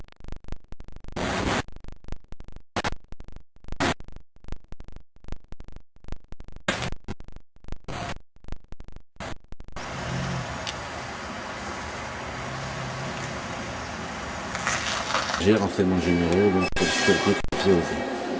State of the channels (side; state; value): both; identical; correlation 1.00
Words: j'ai renseignements généraux, donc